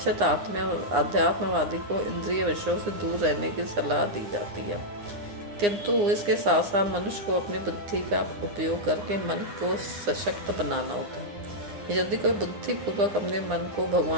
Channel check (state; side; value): late; left; 9.8 ms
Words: अध्यात्मवादी को इंद्रिय विषयों से दूर रहने की सलाह दी जाती है। किंतु इसके साथ साथ मनुष्य को अपनी बुद्धि का उपयोग करके मन को सशक्त बनाना होता है। यदि कोई बुद्धिपूर्वक अपने मन को